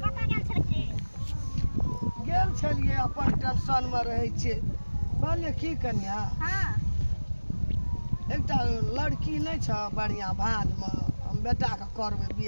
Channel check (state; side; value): inverted; both; correlation -1.00